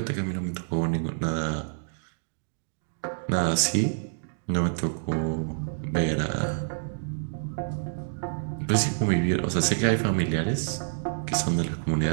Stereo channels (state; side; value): silent; left; digital silence